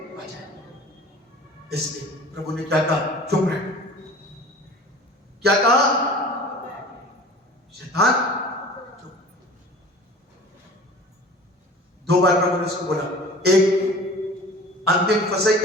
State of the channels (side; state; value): both; normal; correlation 0.43